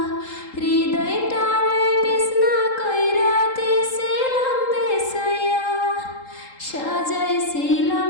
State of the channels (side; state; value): right; late; 3.8 ms